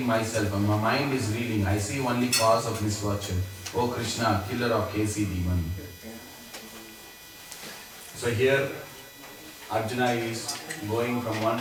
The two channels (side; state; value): both; identical; correlation 1.00